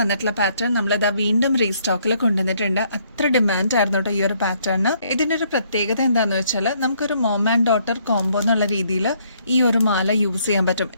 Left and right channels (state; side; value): inverted; both; correlation -0.68